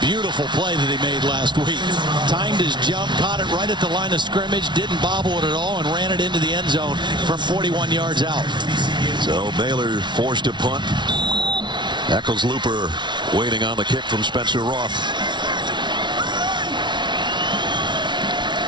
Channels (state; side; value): late; left; 0.22 ms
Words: beautiful play that he made last week. Timed his jump, caught it right at the line of scrimmage, didn't bobble it at all, and ran it into the end zone from 41 yards out. So Baylor forced to punt. Eccles-Looper waiting on the kick from Spencer Roth.